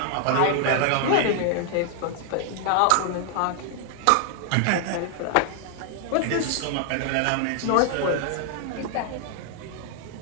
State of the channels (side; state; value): both; different; correlation 0.00